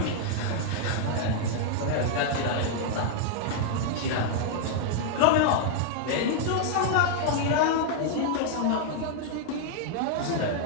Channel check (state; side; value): different; both; correlation -0.01